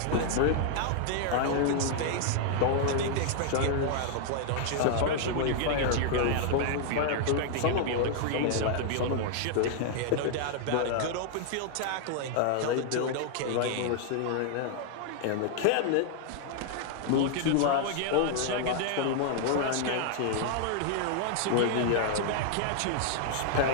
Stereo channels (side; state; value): both; different; correlation -0.01